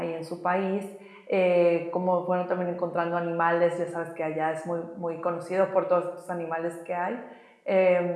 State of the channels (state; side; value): identical; both; correlation 1.00